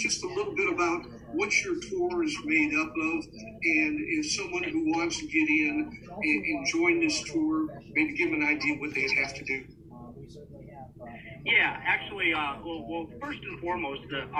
a little bit about what your tour is made up of, and if someone who wants to get in and join this tour, maybe give them an idea what they'd have to do? Yeah, actually, well, first and foremost,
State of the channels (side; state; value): both; identical; correlation 1.00